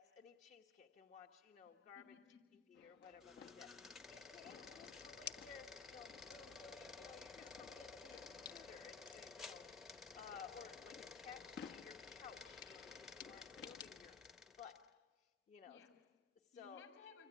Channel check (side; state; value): right; quieter; 5.6 dB